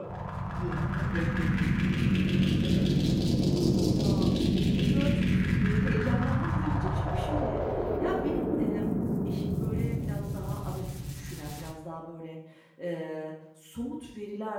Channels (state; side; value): identical; both; correlation 1.00